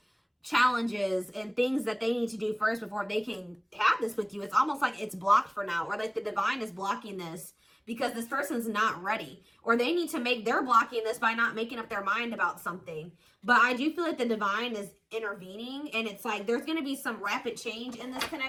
challenges and things that they need to do first before they can have this with you. It's almost like it's blocked for now, or like the divine is blocking this because this person's not ready, or they're blocking this by not making up their mind about something. But I do feel like the divine is intervening, and it's like there's going to be some rapid change in this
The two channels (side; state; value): both; identical; correlation 1.00